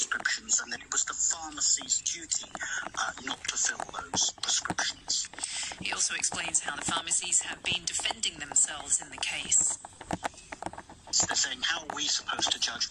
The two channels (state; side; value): identical; both; correlation 1.00